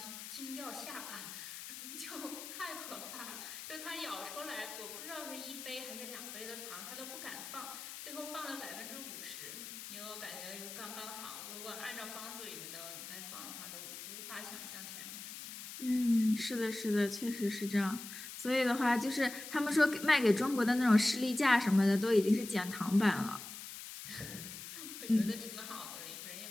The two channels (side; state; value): left; noise; hiss, 10 dB below the sound